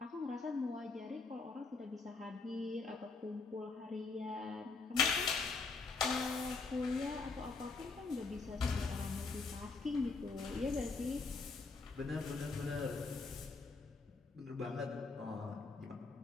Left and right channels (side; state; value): right; quieter; 4.2 dB